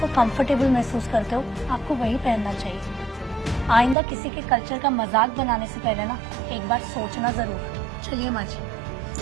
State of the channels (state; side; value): drops out; left; at 4.0 s